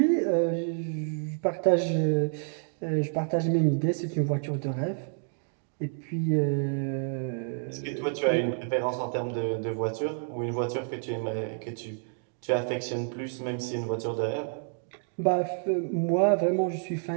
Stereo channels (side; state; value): left; silent; 59 dB below the other